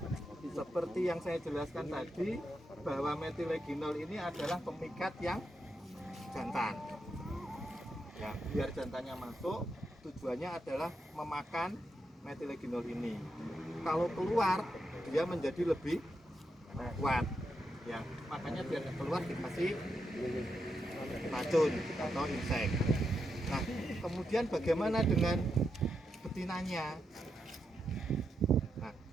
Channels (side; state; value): both; normal; correlation 0.84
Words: Seperti yang saya jelaskan tadi, bahwa metileginol ini adalah pemikat yang jantan. Ya, biar jantannya masuk, tujuannya adalah memakan metileginol ini. Kalau keluar, dia menjadi lebih kuat. Ya, makanya biar keluar dikasih racun atau insek. Nah, kemudian bagaimana dengan betinanya?